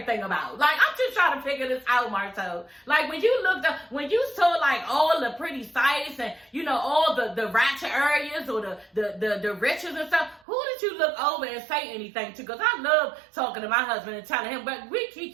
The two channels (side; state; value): left; drops out; at 10.4 s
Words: about? Like, I'm just trying to figure this out, Marcel. Like, when you saw like all the pretty sights and, you know, all the ratchet areas or the riches and stuff, who did you look over and say anything to? Because I love talking to my husband and telling him, but we